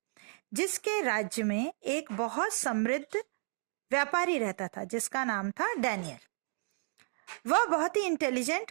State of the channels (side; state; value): left; silent; 56 dB below the other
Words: जिसके राज्य में एक बहुत समृद्ध व्यापारी रहता था जिसका नाम था डैनियल. वह बहुत ही